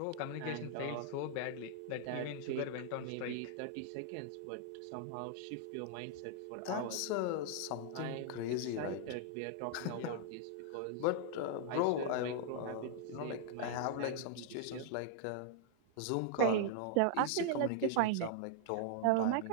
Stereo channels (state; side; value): different; both; correlation -0.01